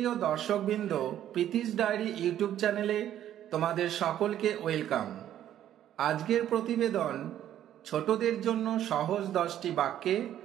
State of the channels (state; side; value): quieter; left; 11.4 dB